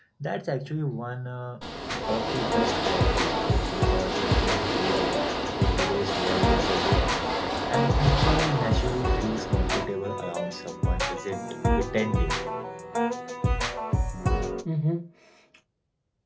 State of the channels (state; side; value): identical; both; correlation 1.00